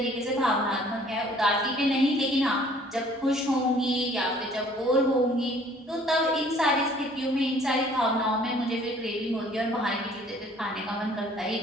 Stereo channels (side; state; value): both; normal; correlation 0.56